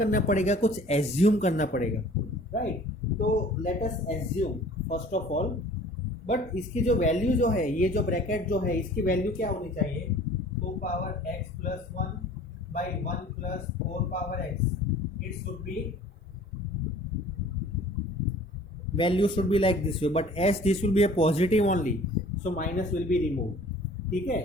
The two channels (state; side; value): normal; both; correlation 0.49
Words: पड़ेगा, कुछ एज्यूम करना पड़ेगा, राइट। तो let us assume first of all, but इसकी जो वैल्यू जो है, ये जो ब्रैकेट जो है, इसकी वैल्यू क्या होनी चाहिए, 2 power x plus 1 by 1 plus 4 power x, it should be, value should be like this way, but S this will be a positive only, so minus will be remove, ठीक है।